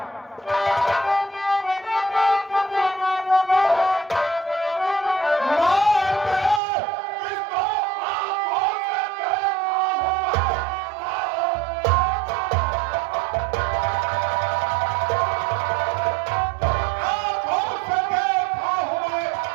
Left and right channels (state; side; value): drops out; left; at 6.6 s